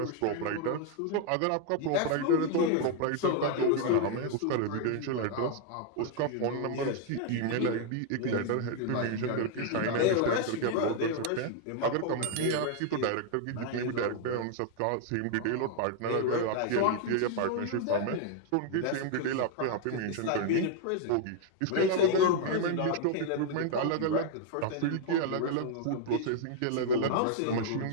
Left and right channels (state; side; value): different; both; correlation 0.00